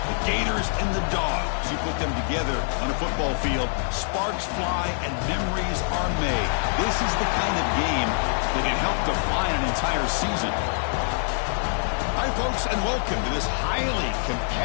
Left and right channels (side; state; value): right; silent; 57 dB below the other